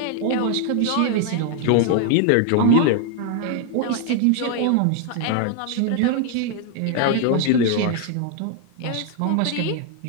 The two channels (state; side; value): different; both; correlation 0.00